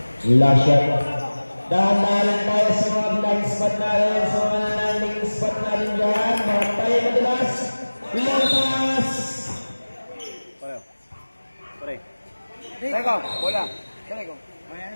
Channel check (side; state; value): both; inverted; correlation -1.00